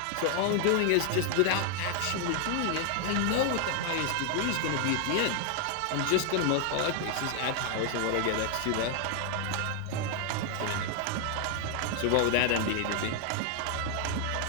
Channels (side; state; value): both; different; correlation 0.00